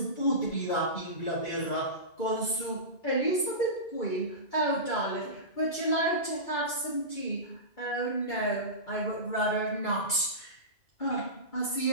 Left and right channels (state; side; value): late; right; 2.3 ms